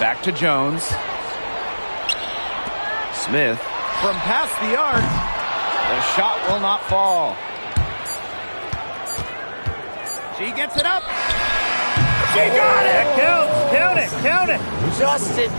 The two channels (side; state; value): both; inverted; correlation -1.00